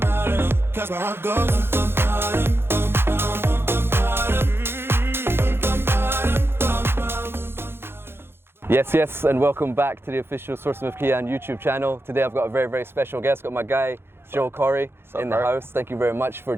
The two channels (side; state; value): left; late; 0.11 ms